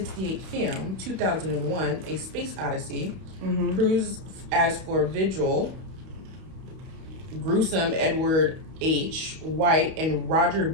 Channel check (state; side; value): late; left; 32 ms